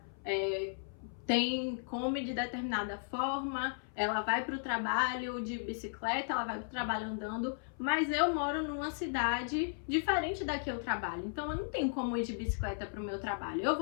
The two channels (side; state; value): right; silent; 54 dB below the other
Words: come de determinada forma, ela vai para o trabalho de bicicleta, ela vai para o trabalho andando, mas eu moro numa cidade diferente da que eu trabalho, então eu não tenho como ir de bicicleta para o meu trabalho. Eu